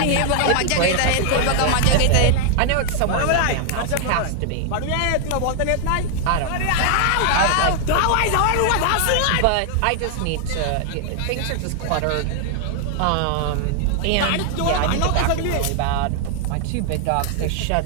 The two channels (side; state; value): both; different; correlation 0.00